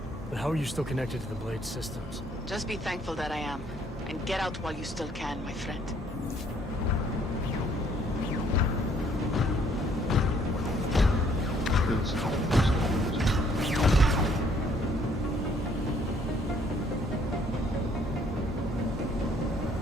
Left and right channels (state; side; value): normal; both; correlation 0.64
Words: but how are you still connected to the Blade systems? Just be thankful that I am. And get out while you still can, my friend.